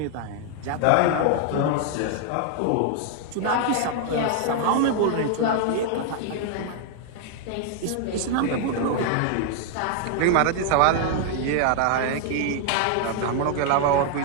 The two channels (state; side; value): different; both; correlation 0.00